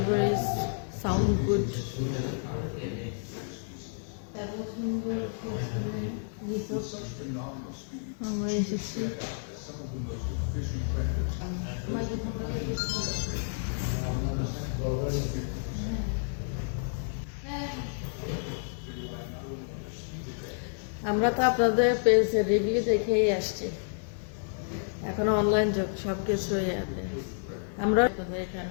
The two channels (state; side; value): silent; right; digital silence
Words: is sound good. আমরা এসেছি। আমরা তো আপনাদের পেজের রিভিউ দেখেই আসছি, এখন অনলাইন যুগ, সব কিছুই আছে। আমরা